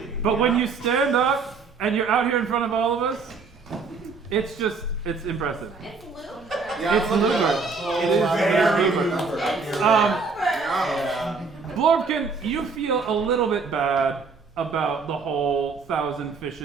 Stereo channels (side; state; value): left; quieter; 4.7 dB